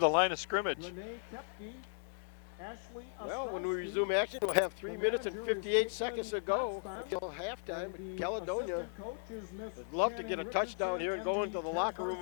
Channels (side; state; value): right; silent; 53 dB below the other